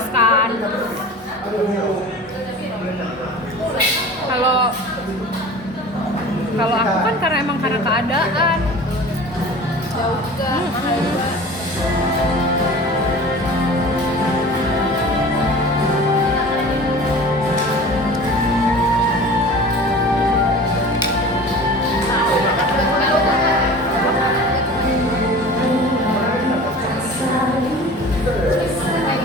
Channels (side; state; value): both; normal; correlation 0.39